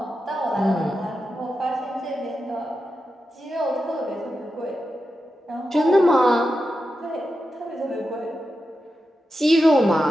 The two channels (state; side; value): normal; both; correlation 0.90